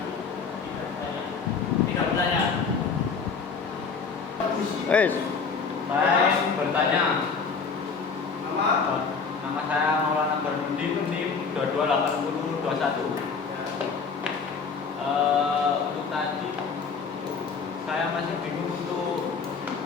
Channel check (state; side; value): quieter; right; 5.3 dB